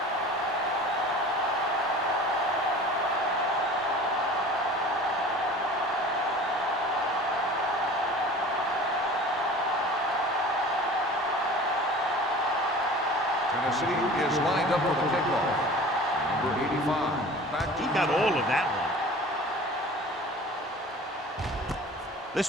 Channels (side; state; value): both; normal; correlation 0.42